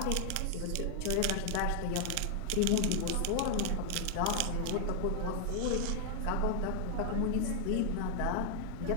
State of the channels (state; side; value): different; both; correlation 0.00